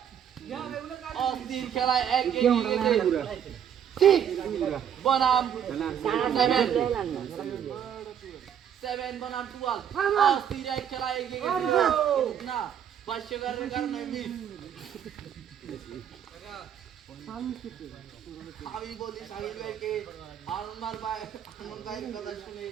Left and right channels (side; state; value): left; quieter; 8.9 dB